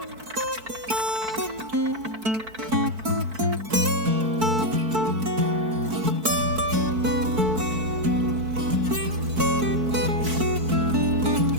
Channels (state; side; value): late; left; 4.5 ms